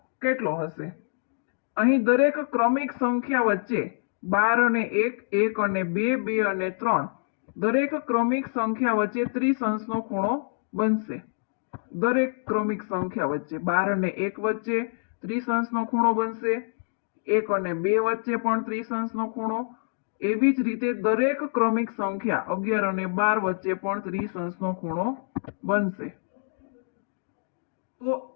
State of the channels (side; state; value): right; silent; digital silence